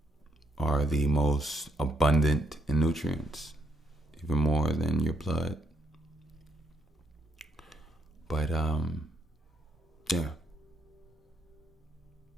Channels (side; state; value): both; normal; correlation 0.74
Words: are the most abundant in nutrients, even more than your blood. But, yeah.